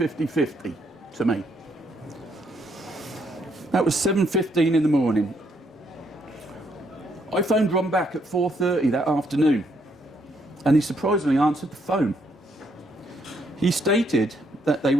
to me. That was 7:15 in the morning. I phoned Ron back at 4:30 that afternoon, and he surprisingly answered the phone. He stated that they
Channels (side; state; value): both; normal; correlation 0.72